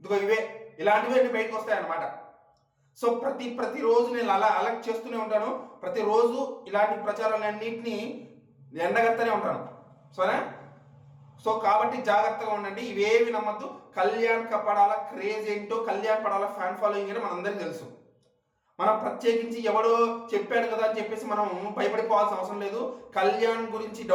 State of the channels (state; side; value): identical; both; correlation 1.00